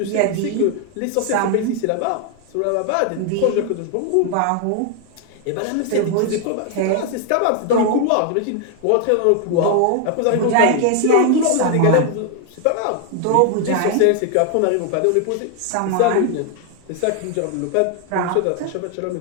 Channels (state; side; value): different; both; correlation 0.00